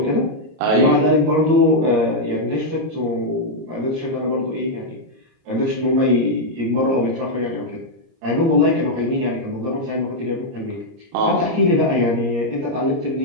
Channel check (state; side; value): late; left; 30 ms